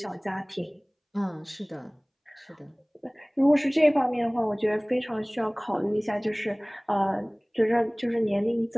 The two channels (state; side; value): identical; both; correlation 1.00